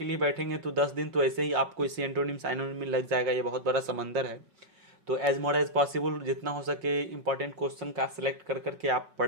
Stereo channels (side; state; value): left; late; 5.4 ms